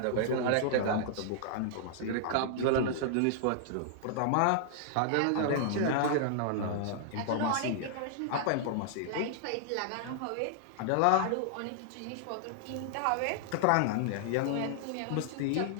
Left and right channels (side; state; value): both; different; correlation -0.01